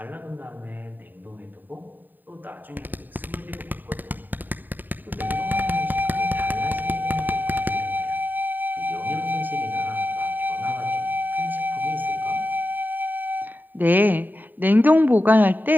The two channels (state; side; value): late; left; 0.089 ms